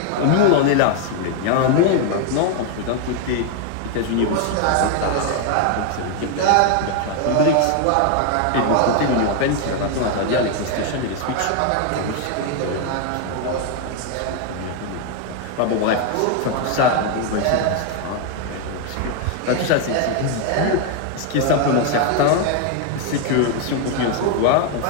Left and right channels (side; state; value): both; different; correlation 0.01